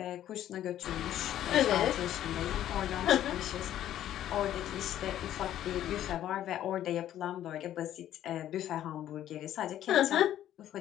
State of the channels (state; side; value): quieter; right; 11.9 dB